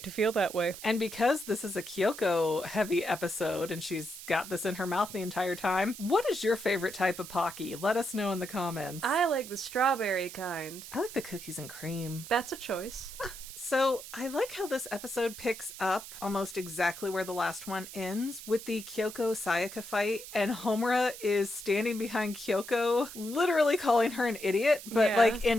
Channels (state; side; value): noise; right; hiss, 13 dB below the sound